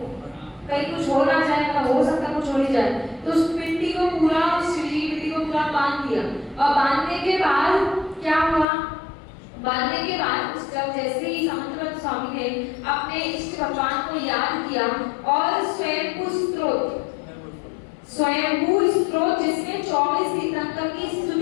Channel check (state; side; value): drops out; right; at 8.7 s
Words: कुछ हो ना जाए, मतलब हो सकता कुछ हो नहीं जाए। तो उस मिट्टी को पूरा बांध दिया और बांधने के बाद क्या हुआ? बांधने के बाद उस जब जैसे ही समंतभद्र स्वामी ने अपने इष्ट भगवान को याद किया और स्वयंभू स्त्रोत जिसमें 24 तीर्थंकर की